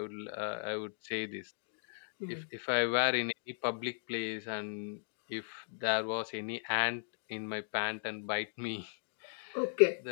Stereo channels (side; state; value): right; silent; digital silence